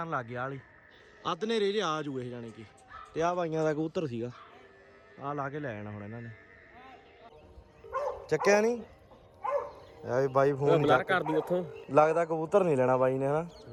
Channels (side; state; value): both; identical; correlation 1.00